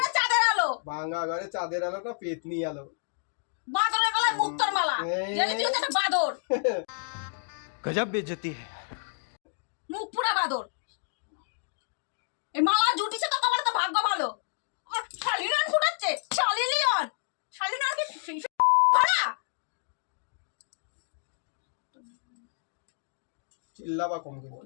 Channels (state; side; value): silent; right; digital silence